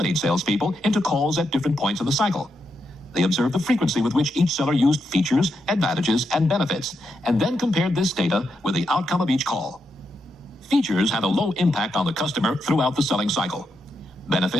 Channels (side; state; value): both; normal; correlation 0.83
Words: salespeople into calls at different points in the cycle. They observed the frequency with which each seller used features, advantages, and benefits, and then compared this data with the outcome of each call. Features had a low impact on the customer throughout the selling cycle.